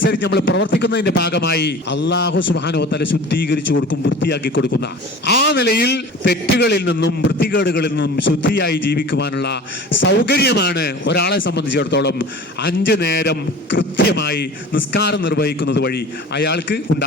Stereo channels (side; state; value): both; normal; correlation 0.40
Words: നമ്മൾ പ്രവർത്തിക്കുന്നതിന്റെ ഭാഗമായി അല്ലാഹു സുബ്ഹാനഹു വ തആല ശുദ്ധീകരിച്ചു കൊടുക്കും, വൃത്തിയാക്കി കൊടുക്കുന്ന. ആ നിലയിൽ തെറ്റുകളിൽ നിന്നും വൃത്തികേടുകളിൽ നിന്നും ശുദ്ധിയായി ജീവിക്കുവാനുള്ള സൗകര്യമാണ് ഒരാളെ സംബന്ധിച്ചിടത്തോളം 5 നേരം കൃത്യമായി നിസ്കാരം നിർവഹിക്കുന്നത് വഴി അയാൾക്ക്